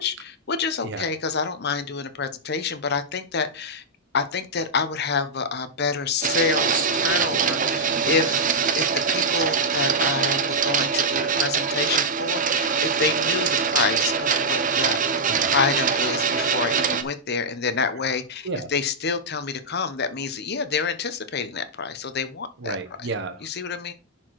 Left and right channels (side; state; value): both; normal; correlation -0.07